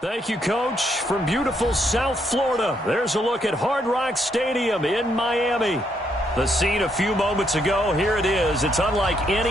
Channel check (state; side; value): normal; both; correlation 0.75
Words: Thank you, Coach. From beautiful South Florida, there's a look at Hard Rock Stadium in Miami. The scene a few moments ago, here it is. It's unlike